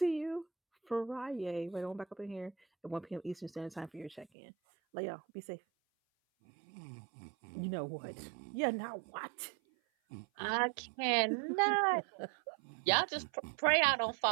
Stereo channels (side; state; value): left; drops out; at 4.2 s